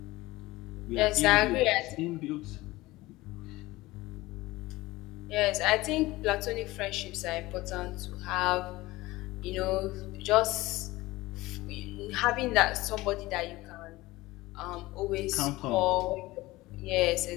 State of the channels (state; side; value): quieter; right; 19.5 dB